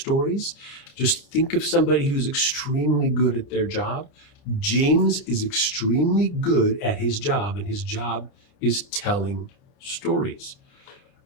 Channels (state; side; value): late; right; 29 ms